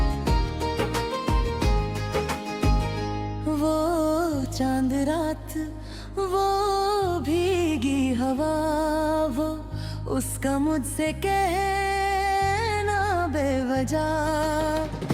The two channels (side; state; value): both; identical; correlation 1.00